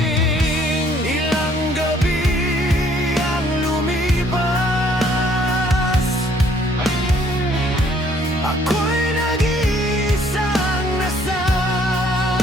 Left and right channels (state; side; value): normal; both; correlation 0.62